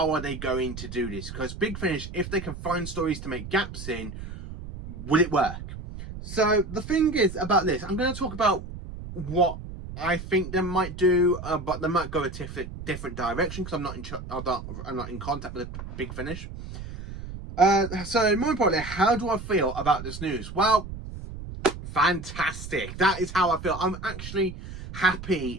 are they going to do this? Because Big Finish, if they can find stories to make gaps in, will it work? So the thing is about this, I'm going to talk about what I think they might do, but they might go a different direction because I'm not in contact with Big Finish. So more importantly, how do I feel about this news? Well, fantastic. That is how I feel. I'm actually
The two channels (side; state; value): right; noise; rumble, 10 dB below the sound